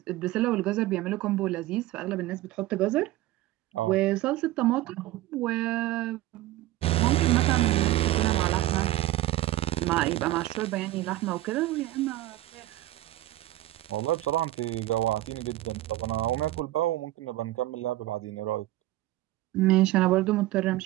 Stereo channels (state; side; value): quieter; left; 16.1 dB